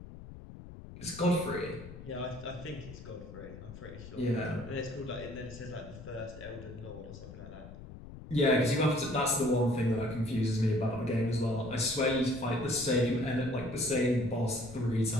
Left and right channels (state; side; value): noise; left; rumble, 14 dB below the sound